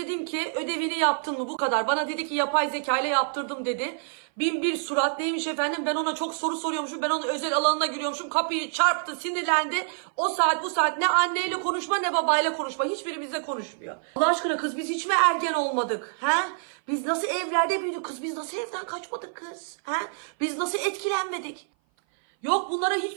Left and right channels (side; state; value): left; silent; 57 dB below the other